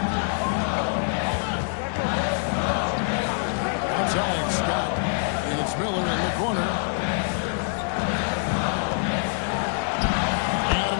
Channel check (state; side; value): silent; right; 62 dB below the other